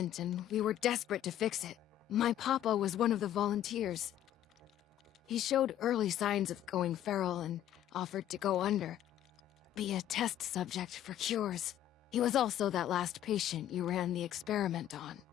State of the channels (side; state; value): right; quieter; 11.7 dB